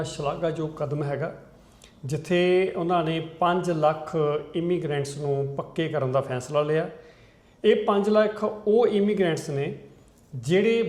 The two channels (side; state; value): both; identical; correlation 1.00